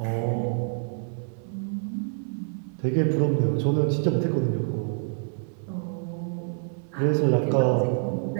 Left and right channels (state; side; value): silent; left; 60 dB below the other